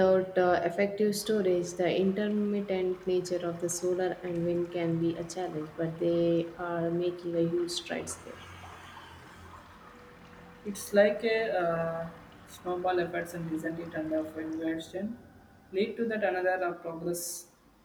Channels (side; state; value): both; identical; correlation 1.00